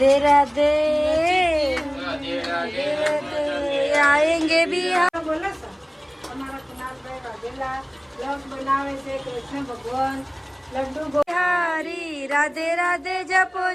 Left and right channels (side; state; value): both; identical; correlation 1.00